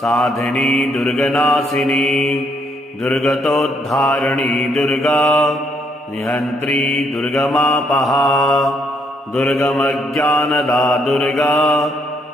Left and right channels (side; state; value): both; normal; correlation 0.72